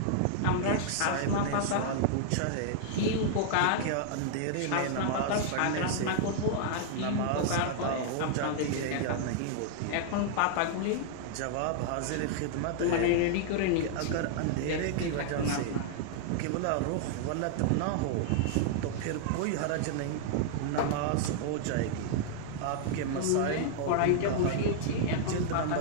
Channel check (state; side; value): different; both; correlation -0.01